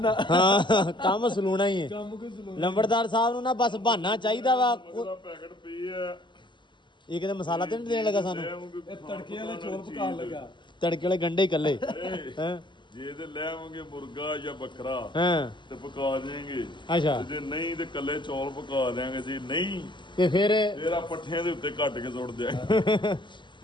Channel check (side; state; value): right; late; 0.23 ms